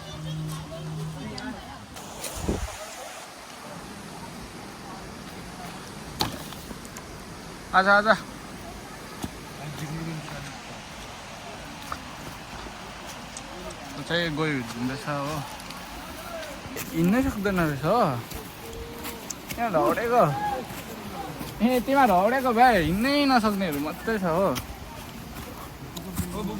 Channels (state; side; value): identical; both; correlation 1.00